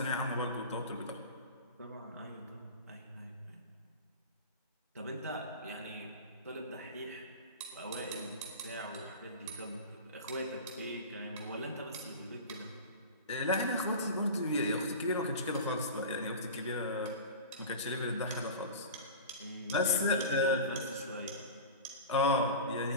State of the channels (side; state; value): both; inverted; correlation -0.31